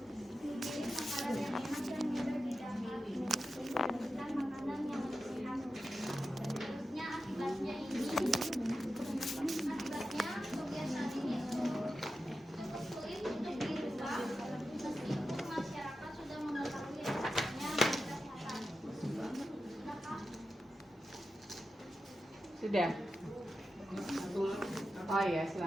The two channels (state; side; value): normal; both; correlation 0.91